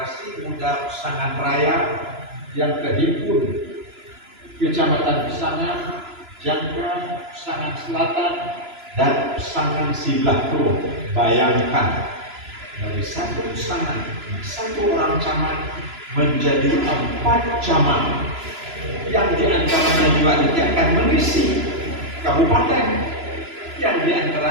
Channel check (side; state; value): left; late; 3.0 ms